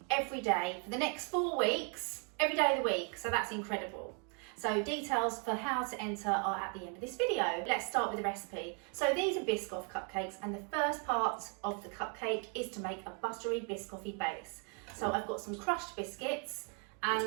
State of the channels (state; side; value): quieter; left; 39.4 dB